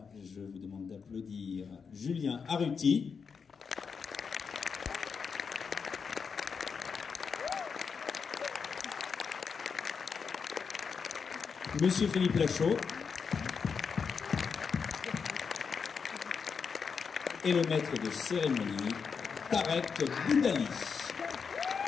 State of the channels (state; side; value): quieter; right; 5.9 dB